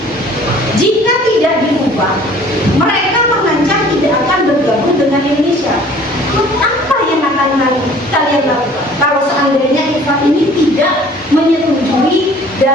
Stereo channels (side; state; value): both; normal; correlation 0.51